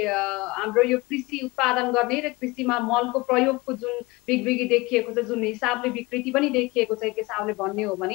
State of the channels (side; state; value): right; quieter; 22.9 dB